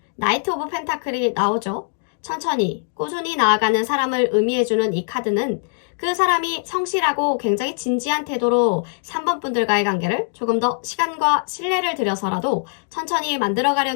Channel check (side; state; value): right; silent; 65 dB below the other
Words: 나이트 오브 펜타클이 나오죠. 천천히 꾸준히 나아가는 사람을 의미해주는 이 카드는 그 사람이 성실하고 굉장히 진지한 태도로 3번 분들과의 관계를 조금 더 시간과 신뢰를 들여서라도 천천히